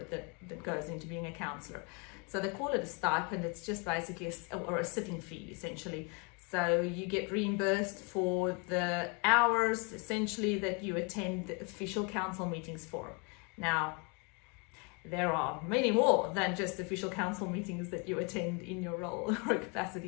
that goes into being a counsellor. So they call it a stipend. It's just basically a sitting fee, essentially. So you get reimbursed for the hours, essentially, that you attend the official council meetings for. Now, there are many more than just official council meetings that you attend in your role or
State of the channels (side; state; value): right; quieter; 32.6 dB